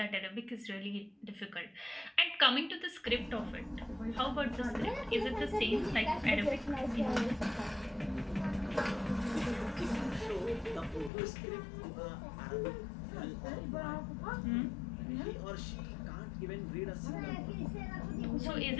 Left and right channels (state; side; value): drops out; right; at 11.1 s